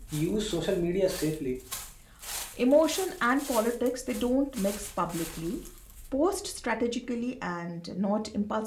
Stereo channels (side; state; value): both; identical; correlation 1.00